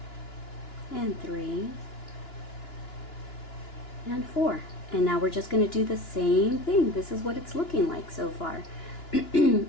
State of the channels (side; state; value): right; late; 2.9 ms